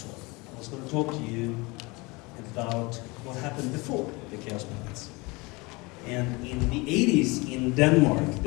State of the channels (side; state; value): right; quieter; 25.3 dB